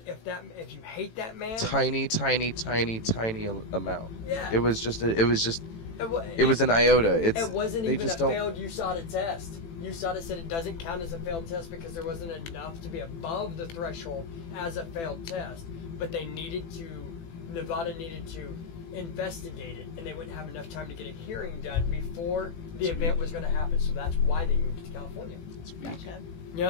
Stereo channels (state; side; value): late; right; 18 ms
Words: if you hate that man. Tiny amount. Yeah. It was just wa- it was an iota. It wasn't they even a just don't. failed USADA test. USADA said it doesn't count as a failed test because there wasn't enough to be above the threshold as a failed test. But Nevada needed to investigate it, and they wouldn't have enough time to get a hearing done before the event was going to happen. So that's why they moved to California. It's weak. Gotcha. You